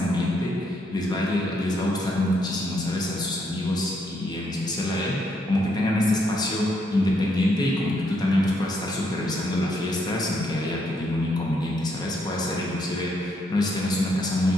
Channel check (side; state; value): both; normal; correlation 0.74